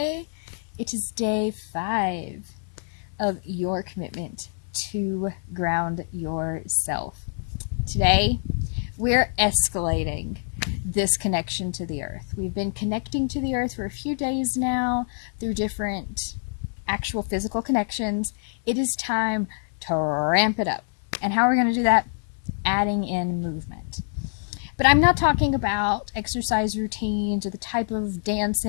It is day 5 of your commitment to ground yourself. Today, we're escalating this connection to the earth. We've been connecting to the earth for a few days now through different actual physical connections. It is time to ramp it up. And how are we going to do that? Adding in movement. But I'm not talking about exercise routines or the type of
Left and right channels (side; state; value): right; silent; digital silence